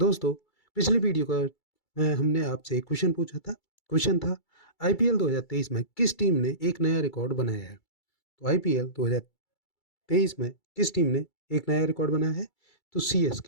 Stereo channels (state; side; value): late; right; 2.3 ms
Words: पिछली वीडियो का हमने आपसे एक क्वेश्चन पूछा था। क्वेश्चन था आईपीएल 2023 में किस टीम ने एक नया रिकॉर्ड बनाया है। तो आईपीएल 2023 में किस टीम ने एक नया रिकॉर्ड बनाया है? तो